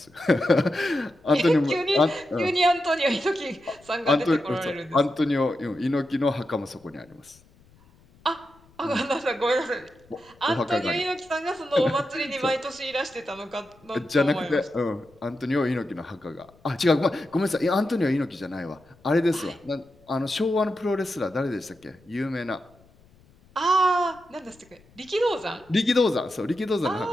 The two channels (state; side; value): noise; left; rumble, 29 dB below the sound